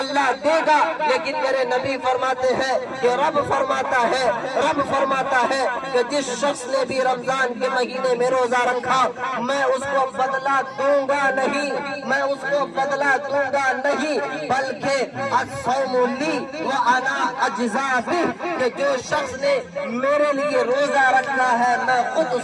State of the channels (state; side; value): identical; both; correlation 1.00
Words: دے گا، لیکن میرے نبی فرماتے ہیں کہ رب فرماتا ہے کہ جس شخص نے بھی رمضان کے مہینے میں روزہ رکھا میں اس کو بدلہ دوں گا نہیں، میں اس کو بدلہ دوں گا نہیں، بلکہ الصوم لی وانا اجزا بہ، کہ جو شخص نے میرے لیے روزہ رکھا ہے میں خود